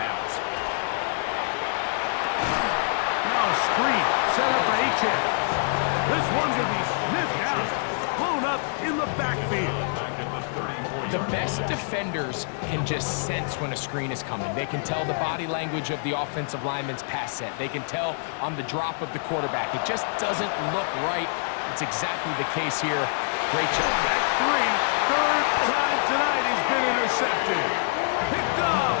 Now a screen set up for H.A. This one's going to be sniffed out, blown up in the backfield. The best defenders can just sense when a screen is coming. They can tell the body language of the offensive lineman's pass set. They can tell on the drop of the quarterback. It just doesn't look right. It's exactly the case here. Great job. That's 3rd time tonight he's been intercepted. Picked off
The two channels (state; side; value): silent; right; digital silence